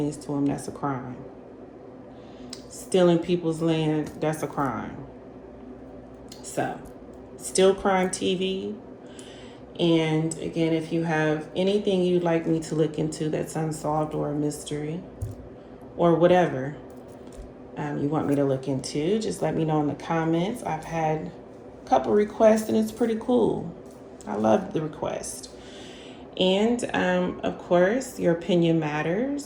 to them, that's a crime. Stealing people's land, that's a crime. So, Still Crime TV. And again, if you have anything you'd like me to look into that's unsolved or a mystery or whatever you want me to look into, just let me know in the comments. I've had a couple requests and it's pretty cool. I love the request. And of course, your opinion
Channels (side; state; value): both; identical; correlation 1.00